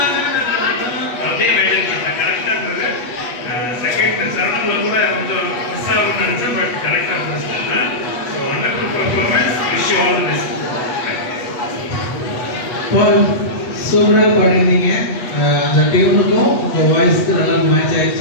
அப்படியே maintain பண்ண கரெக்டா இருந்தது செகண்ட் சரணம்ல கூட கொஞ்சம் மிஸ் ஆகும் நினைச்சேன் பட் கரெக்டா இருந்துச்சு so wonderful performance wish you all the best பால் சூப்பரா பாடினீங்க அந்த டியூனுக்கும் உங்க வாய்ஸ்க்கு நல்லா மேட்ச்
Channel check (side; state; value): right; late; 8.3 ms